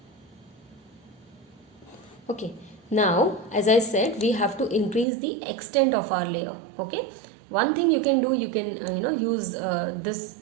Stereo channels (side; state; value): left; drops out; at 5.1 s